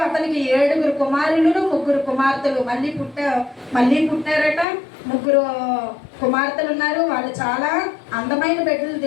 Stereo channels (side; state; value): right; drops out; at 4.7 s